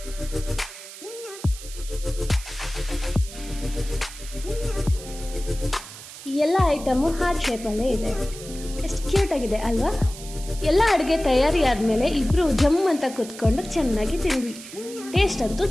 ಈ ಎಲ್ಲ ಐಟಮು ಹಾರ್ಟ್ ಶೇಪಲ್ಲೇ ಇದೆ. ಎಷ್ಟು ಕ್ಯೂಟಾಗಿದೆ ಅಲ್ವಾ? ಎಲ್ಲ ಅಡುಗೆ ತಯಾರಿ ಆದಮೇಲೆ ಇಬ್ಬರು ಜಮ್ ಅಂತ ಕೂತ್ಕೊಂಡು ಚೆನ್ನಾಗಿ ತಿಂದ್ವಿ. ಟೇಸ್ಟ್ ಅಂತೂ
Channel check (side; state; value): right; noise; hiss, 14 dB below the sound